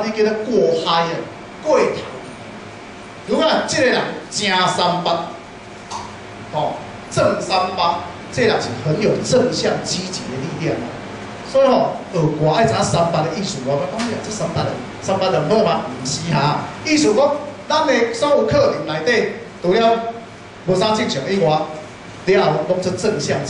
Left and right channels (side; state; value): both; identical; correlation 1.00